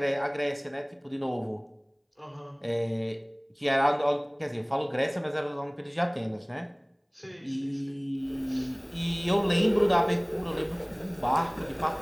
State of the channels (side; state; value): both; identical; correlation 1.00